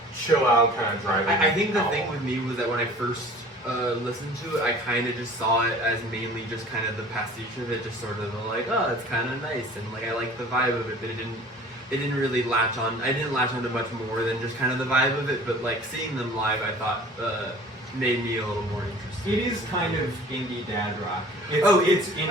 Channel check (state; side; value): normal; both; correlation 0.46